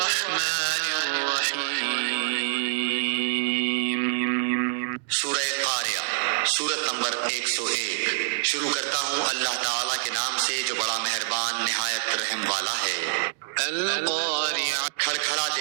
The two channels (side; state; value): left; silent; digital silence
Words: الرحیم۔ سورہ قاریہ، سورت نمبر 101۔ شروع کرتا ہوں اللہ تعالیٰ کے نام سے جو بڑا مہربان نہایت رحم والا ہے۔ القاریہ، کھڑکھڑا